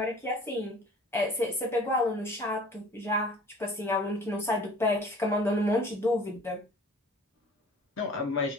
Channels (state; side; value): normal; both; correlation 0.48